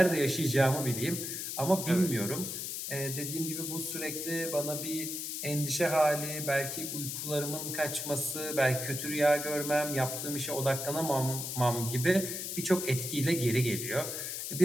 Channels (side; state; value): left; noise; hiss, 4 dB below the sound